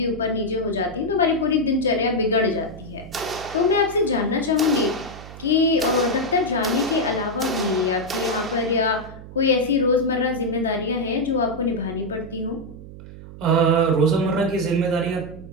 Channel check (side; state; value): right; noise; hum, 15 dB below the sound